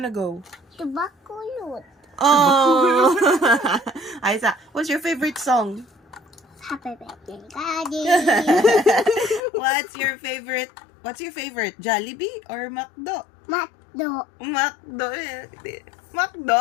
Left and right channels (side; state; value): right; drops out; at 9.4 s